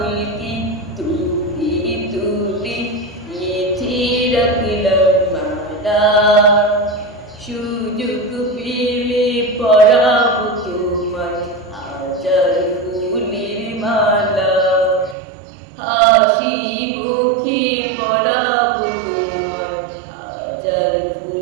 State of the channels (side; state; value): left; drops out; at 15.2 s